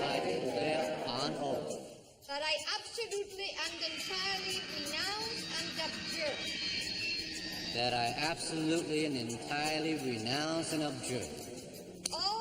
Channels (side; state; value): both; identical; correlation 1.00